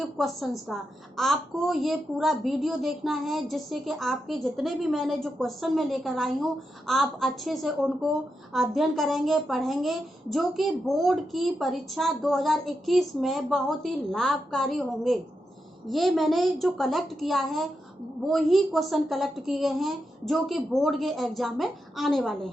क्वेश्चंस का। आपको ये पूरा वीडियो देखना है जिससे कि आपके जितने भी मैंने जो क्वेश्चन में लेकर आई हूँ आप अच्छे से उनको अध्ययन करेंगे, पढ़ेंगे, जो कि बोर्ड की परीक्षा 2021 में बहुत ही लाभकारी होंगे। ये मैंने जो कलेक्ट किया है वो ही क्वेश्चन कलेक्ट किए गए हैं जो कि बोर्ड के एग्जाम में आने वाले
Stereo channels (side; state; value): both; normal; correlation 0.86